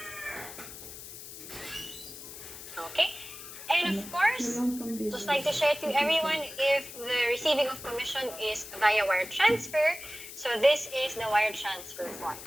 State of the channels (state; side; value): noise; left; hiss, 13 dB below the sound